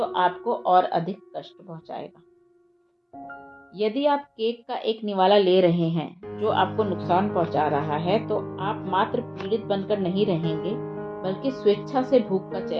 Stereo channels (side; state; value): both; identical; correlation 1.00